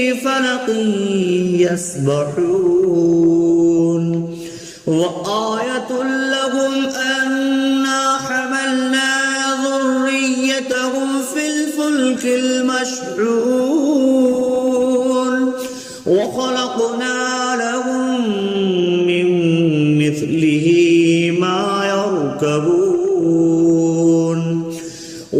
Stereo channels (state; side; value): identical; both; correlation 1.00